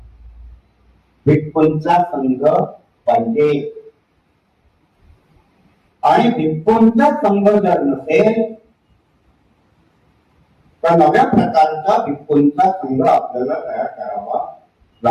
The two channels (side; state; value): both; identical; correlation 1.00